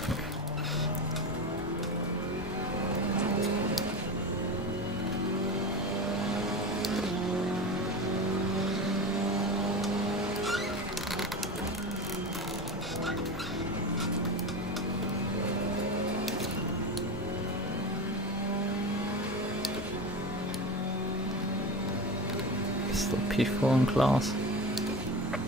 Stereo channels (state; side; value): normal; both; correlation 0.25